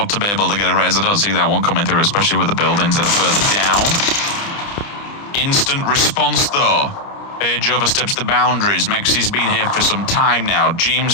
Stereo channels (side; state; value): right; late; 30 ms